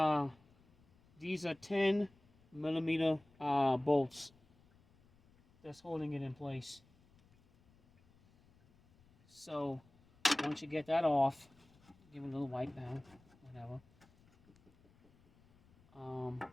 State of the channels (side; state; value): left; noise; rumble, 30 dB below the sound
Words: 10mm bolts that's holding it in place. So once you get that off, give it a little wipe down, whatever.